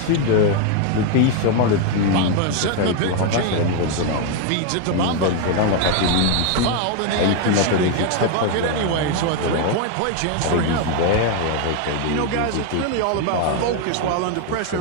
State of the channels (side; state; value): both; different; correlation 0.01